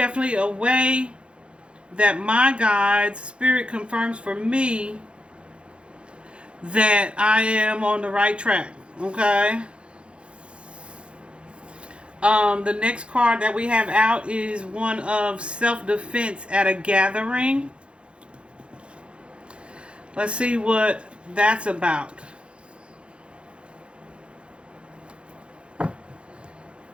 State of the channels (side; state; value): left; late; 0.058 ms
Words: a way that my guide's spirit confirms for me that I am on the right track. Okay? The next card that we have out is one of self-defense at a gathering. Let's see what that's about.